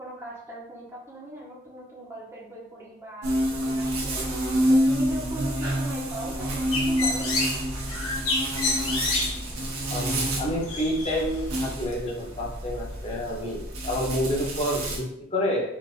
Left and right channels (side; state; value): both; normal; correlation 0.57